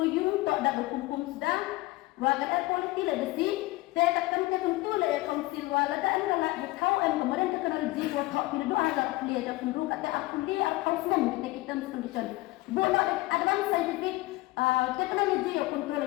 you tak ada berkumpul sedang. Wakat air quality legacy. Saya takkan tentu le council wala da adalah kau kemudian teknologi buat kau tidak doa agak kuliah ada penduduk kata aku kuliah council kita condition. Boleh advanced scientific technology of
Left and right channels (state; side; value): quieter; right; 19.9 dB